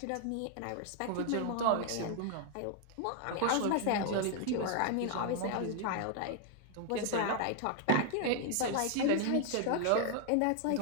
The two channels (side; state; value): both; different; correlation 0.00